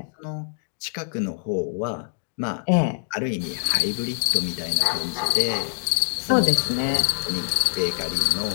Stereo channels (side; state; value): right; silent; digital silence